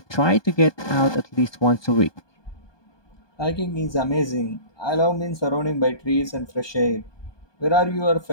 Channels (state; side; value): late; right; 1.2 ms